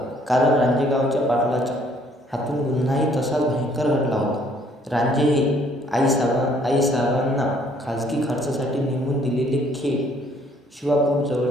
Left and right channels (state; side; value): normal; both; correlation 0.63